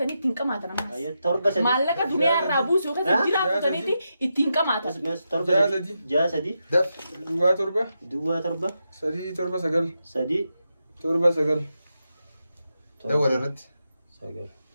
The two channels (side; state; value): both; inverted; correlation -0.87